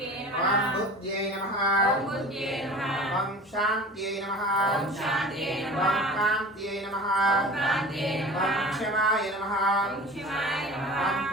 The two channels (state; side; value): normal; both; correlation 0.39